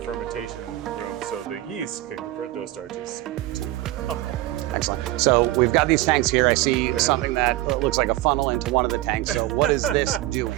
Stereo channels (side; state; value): left; quieter; 16.5 dB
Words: room so the yeast can convert those starches to alcohol. Excellent. So we've got these tanks here. I see something that looks like a funnel into one of the tanks. So what is this doing?